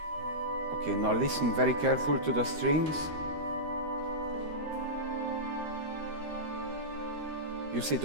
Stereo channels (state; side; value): late; left; 13 ms